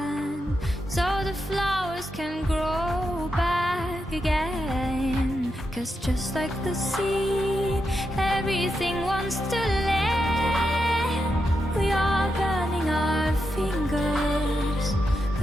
so the flowers can grow back again. 'Cause just like the seed, everything wants to land. We are burning our fingers,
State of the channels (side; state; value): both; normal; correlation 0.86